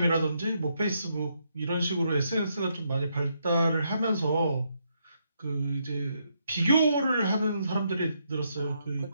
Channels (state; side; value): inverted; both; correlation -0.77